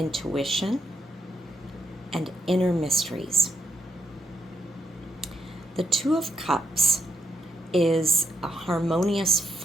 and inner mysteries. The Two of Cups is a harmonious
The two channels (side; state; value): both; normal; correlation 0.79